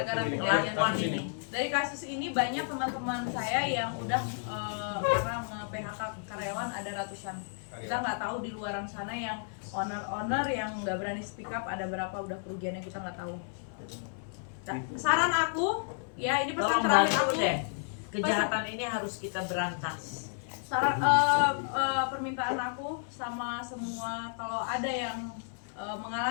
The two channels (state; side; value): silent; right; 56 dB below the other